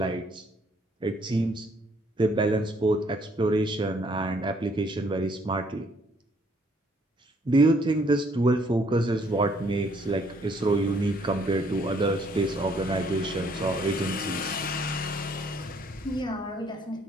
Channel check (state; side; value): normal; both; correlation 0.65